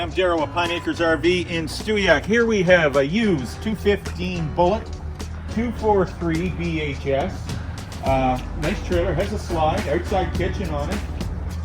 Darryl with Pine Acres RV in Stewiacke. Here we have a used 215 Bullet 243 BHS. Nice trailer, has a slide, outside kitchen on it.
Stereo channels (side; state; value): both; identical; correlation 1.00